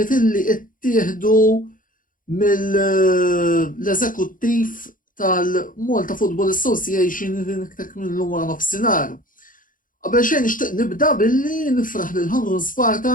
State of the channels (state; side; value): late; right; 0.39 ms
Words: illi ttieħdu mill-eżekuttiv tal-Malta Football Association li niktek minnhom wara nofsinhar. Qabel xejn nixtieq nibda billi nifraħ lil Hamrun